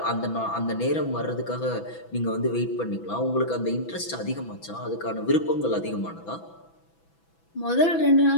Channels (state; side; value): late; right; 6.0 ms